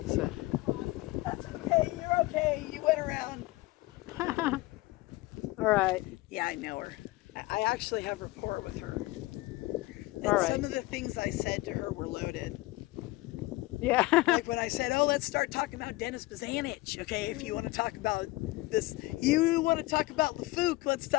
So. That's okay. You're okay. You went around. All right. Yeah, I know her. I actually have rapport with her. And All right. some of the things I said to her were loaded. Yeah. Like when I said, oh, let's start talking about Dennis Bazanich. Okay, if you want to talk about this, you want to talk about LaFouque, let's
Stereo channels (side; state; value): right; quieter; 20.4 dB